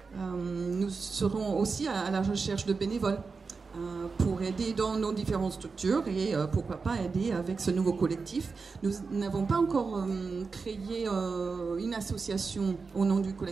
Nous serons aussi à la recherche de bénévoles pour aider dans nos différentes structures et pourquoi pas aider avec ce nouveau collectif. Nous n'avons pas encore créé une association au nom du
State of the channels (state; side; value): quieter; left; 4.7 dB